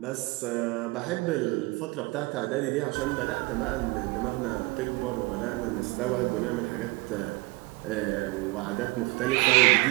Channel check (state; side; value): quieter; left; 24.7 dB